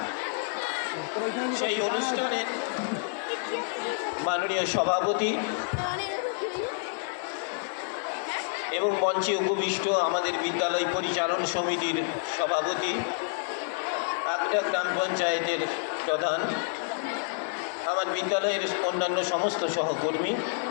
সেই অনুষ্ঠানের মাননীয় সভাপতি এবং মঞ্চে উপবিষ্ট আমাদের বিদ্যালয় পরিচালন সমিতির সভাপতি, কাকড়া গ্রাম পঞ্চায়েতের প্রধান, আমার বিদ্যালয়ের অন্যান্য সমস্ত সহকর্মী,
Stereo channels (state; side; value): silent; right; digital silence